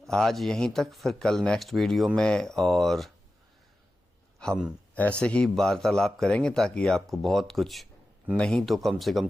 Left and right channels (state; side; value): normal; both; correlation 0.93